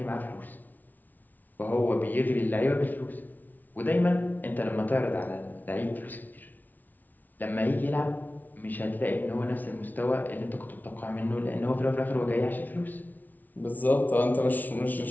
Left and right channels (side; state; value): right; late; 0.080 ms